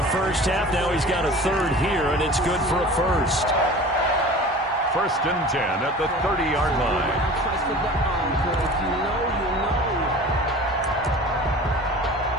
first half. Now he's got a 3rd here, and it's good for a 1st. 1st and 10 at the 30-yard line.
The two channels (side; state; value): both; normal; correlation 0.40